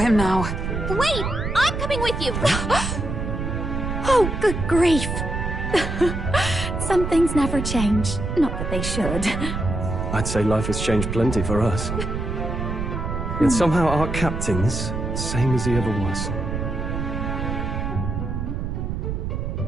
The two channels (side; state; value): right; noise; rumble, 3 dB below the sound